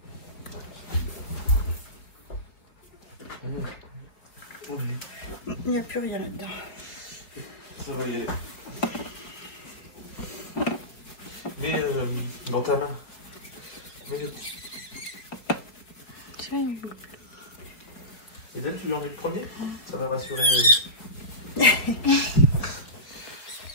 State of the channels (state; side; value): late; right; 5.0 ms